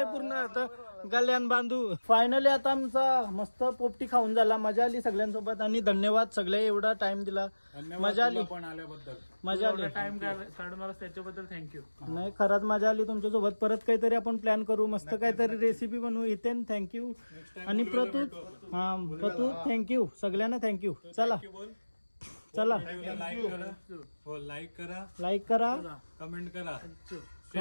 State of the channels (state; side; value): inverted; both; correlation -1.00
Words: पूर्ण तर गल्यान बांधू. फायनली आता आमचा मस्त पोपटी खाऊन झाला. मजा आली सगळ्यांसोबत आणि धन्यवाद सगळे एवढा टाइम दिला. मजा आली पण आल्याबद्दल, मजा आली. टाइम काढून आला त्याच्याबद्दल थँक्यू. नाही खरंच मजा आली तुमच्यासोबत. परत काहीतरी आपण प्लॅन करू, मस्त काहीतरी रेसिपी बनवू. इथेन थँक्यू आणि प्रतू प्रतू थँक्यू, सगळ्यांना थँक्यू. चला चला लाईक करा कमेंट करा